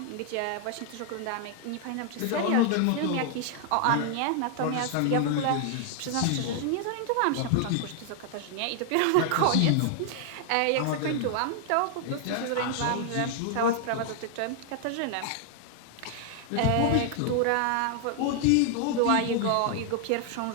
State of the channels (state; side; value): different; both; correlation 0.00